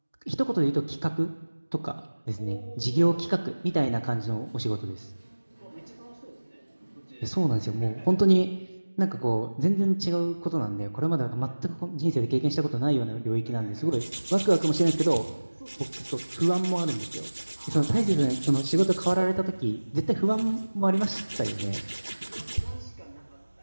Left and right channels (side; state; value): both; inverted; correlation -1.00